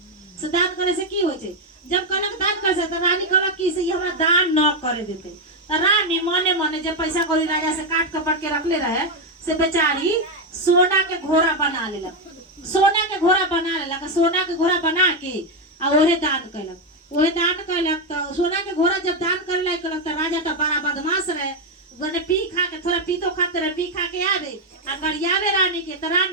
से दान करे से की होइ छै। जब कहलक दान करे से तो रानी कहलक कि से हमरा दान न करे देते। तो रानी मने जे पैसा कौड़ी राजा से काट कपट के रखले रहे से बेचारी सोना के घोड़ा बना लेलक, सोना के घोड़ा बना के आ ओहे दान कैलक। तो सोना के घोड़ा जब दान करे लायक कैलक तो राजा तो बड़ा बदमाश रहे, गने पी खा के थोड़ा पीतो खाते रहे, पी खा के आवे आ गरियावे रानी के। तो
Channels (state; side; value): normal; both; correlation 0.05